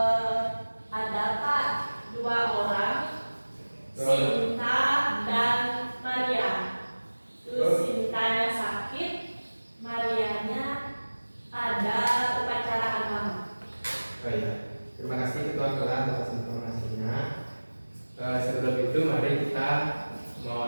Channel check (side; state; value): both; inverted; correlation -1.00